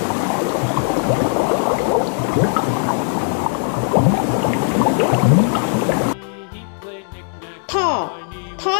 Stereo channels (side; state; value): right; silent; 57 dB below the other